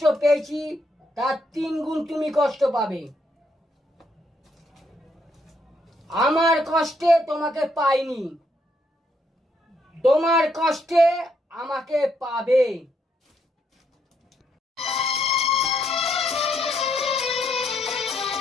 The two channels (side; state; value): both; normal; correlation 0.75